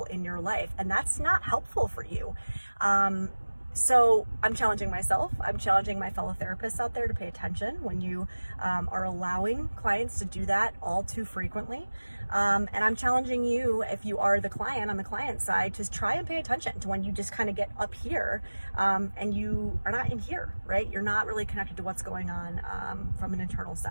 in your life, and that's not helpful for you. So I'm challenging myself. I'm challenging my fellow therapists out there to pay attention when you are allowing clients to do that all too frequently. And I'm challenging you, if you are the client on the client side, to try and pay attention to when you just kind of get up here and you are not in here, right? You're not really connected to what's going on from an internal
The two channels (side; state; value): both; inverted; correlation -1.00